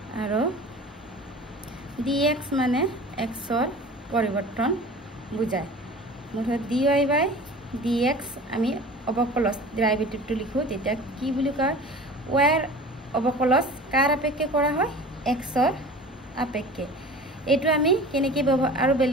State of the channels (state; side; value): normal; both; correlation 0.40